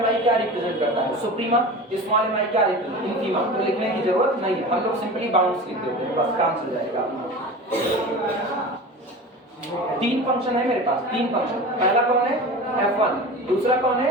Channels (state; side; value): normal; both; correlation 0.33